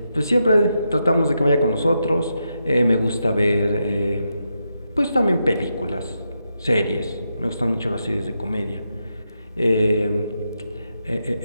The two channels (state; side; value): inverted; both; correlation -0.84